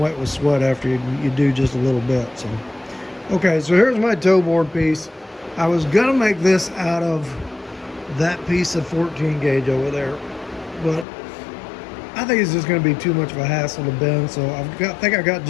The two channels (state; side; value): drops out; right; at 11.1 s